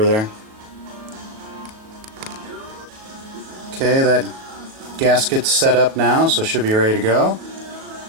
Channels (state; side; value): late; left; 37 ms